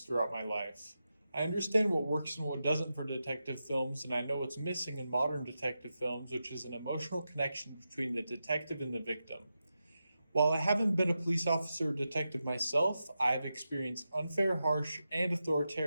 my life. I understand what works and what doesn't for detective films, and I know what's missing in modern detective films, which is an emotional connection between the detective and the victim. While I haven't been a police officer or detective myself, I've experienced unfair, harsh, and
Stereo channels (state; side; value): inverted; both; correlation -0.89